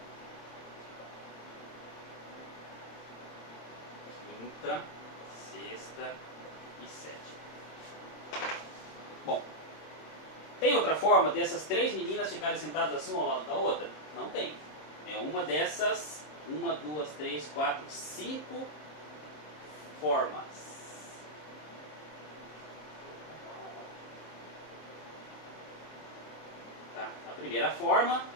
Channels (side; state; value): right; late; 26 ms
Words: quinta, sexta e sétima. Bom, tem outra forma dessas 3 meninas ficarem sentadas assim uma ao lado da outra? Não tem. É uma dessas 1, 2, 3, 4, 5 formas. Tá? A primeira forma,